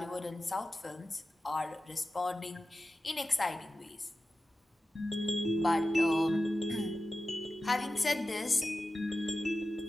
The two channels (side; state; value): both; normal; correlation 0.93